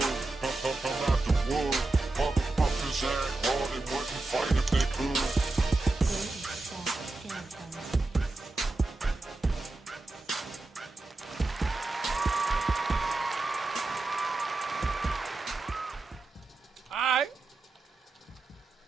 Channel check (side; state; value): left; quieter; 3.2 dB